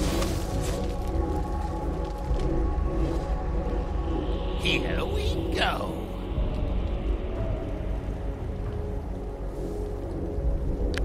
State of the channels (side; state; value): both; identical; correlation 1.00